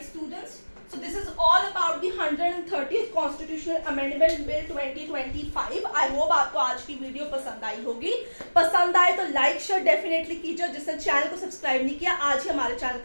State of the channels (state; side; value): inverted; both; correlation -1.00